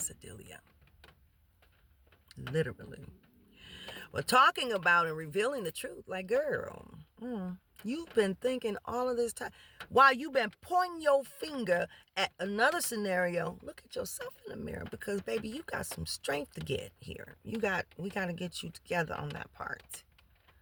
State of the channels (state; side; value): identical; both; correlation 1.00